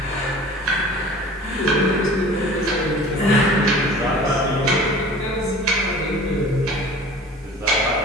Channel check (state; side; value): normal; both; correlation 0.43